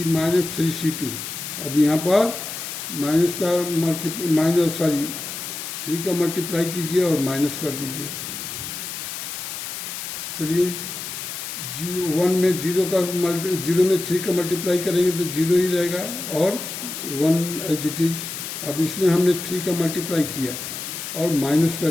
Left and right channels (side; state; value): left; noise; hiss, 7 dB below the sound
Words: माइनस 3 C2। अब यहाँ पर माइनस का मल्टीप्लाई 3 का मल्टीप्लाई कीजिए और माइनस कर दीजिए। चलिए 1 में 0 में 3 का मल्टीप्लाई करेंगे तो 0 ही रहेगा और 1 एज इट इज। अब इसमें हमने 3 का मल्टीप्लाई किया और माइनस कर